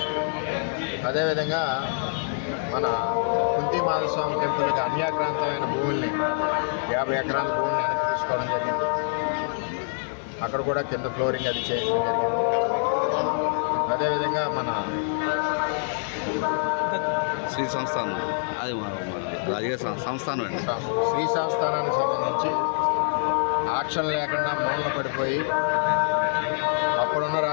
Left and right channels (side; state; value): right; silent; digital silence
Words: అదేవిధంగా మన కుంతి మాధవస్వామి టెంపుల్కి అన్యాక్రాంతమైన భూముల్ని 50 ఎకరాల భూమిని వెనక్కి తీసుకోవడం జరిగింది. అక్కడ కూడా కింద ఫ్లోరింగ్ అది చేయడం జరిగింది. అదేవిధంగా మన శ్రీ సంస్థానం, అది రాజకీయ సంస్థానం అండి. శ్రీ సంస్థానానికి సంబంధించి ఆక్షన్ లేకుండా మూలన పడిపోయి అప్పుడున్న